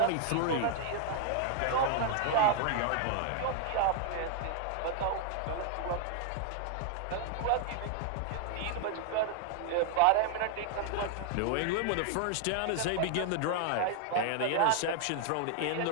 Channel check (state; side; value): different; both; correlation 0.00